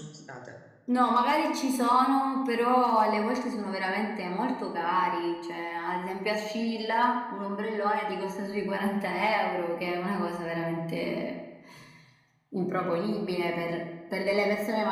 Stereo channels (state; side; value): identical; both; correlation 1.00